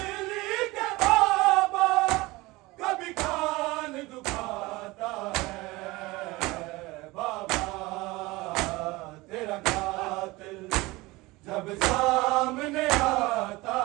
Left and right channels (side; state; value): left; quieter; 21.5 dB